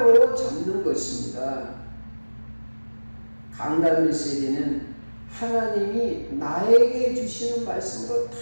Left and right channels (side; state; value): both; inverted; correlation -1.00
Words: 잡는 것입니다. 강단 메시지는 하나님이 나에게 주시는 말씀으로 다